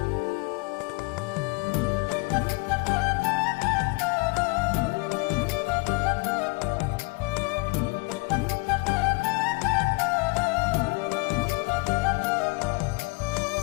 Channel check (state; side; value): quieter; right; 27.6 dB